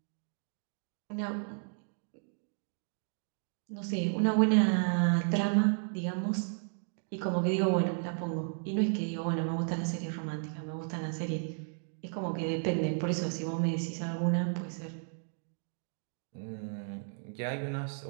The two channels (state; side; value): silent; left; 55 dB below the other